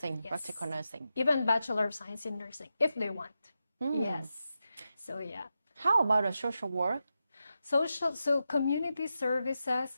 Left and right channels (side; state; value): both; inverted; correlation -0.89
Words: yes. practical nursing. Even Bachelor of Science in Nursing, if they want. Yes. So yeah. How about the social work? So community